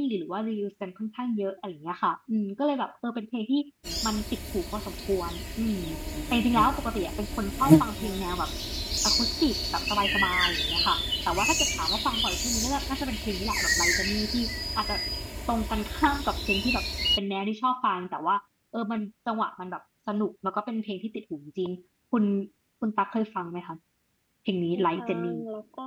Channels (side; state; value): both; identical; correlation 1.00